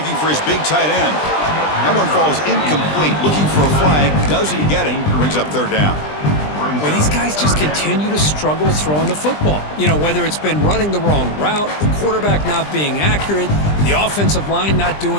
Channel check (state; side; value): late; right; 20 ms